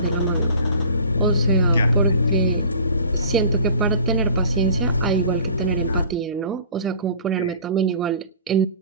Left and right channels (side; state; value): both; inverted; correlation -0.44